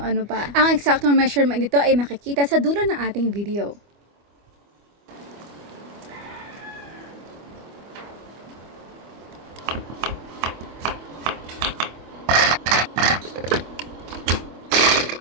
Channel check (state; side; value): late; left; 25 ms